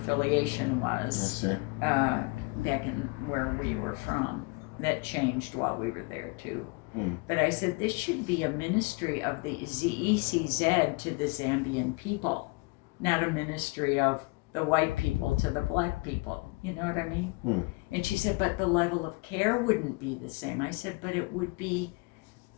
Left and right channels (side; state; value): right; quieter; 27.8 dB